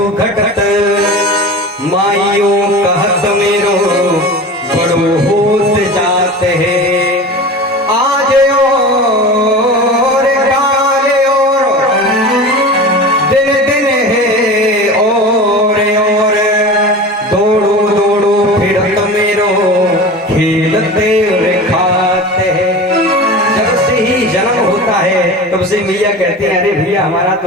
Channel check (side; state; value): both; normal; correlation 0.33